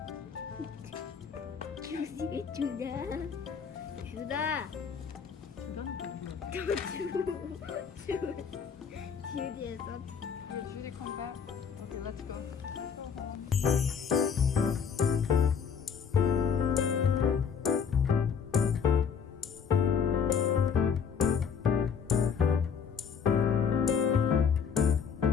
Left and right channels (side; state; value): right; quieter; 6.7 dB